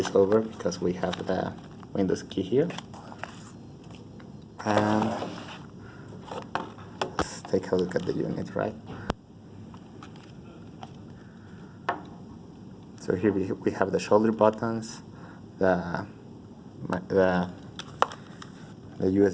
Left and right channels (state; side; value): identical; both; correlation 1.00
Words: over because we have the Windows key here. And let's take a look at the unit, right? So here we have the shoulder buttons, the